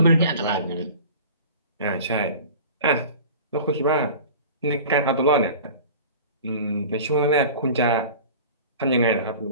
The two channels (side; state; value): both; inverted; correlation -0.40